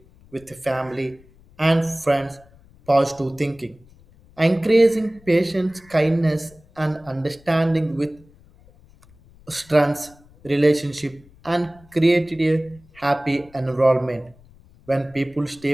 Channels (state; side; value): noise; left; rumble, 27 dB below the sound